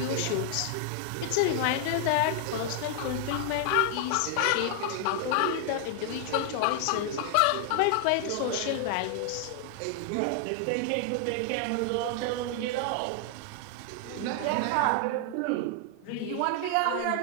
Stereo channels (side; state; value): both; different; correlation 0.00